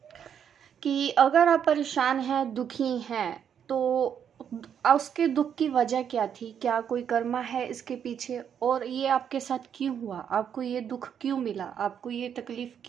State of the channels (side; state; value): left; quieter; 8.3 dB